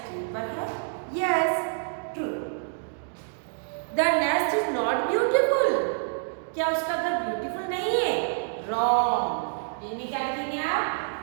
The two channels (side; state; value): left; silent; digital silence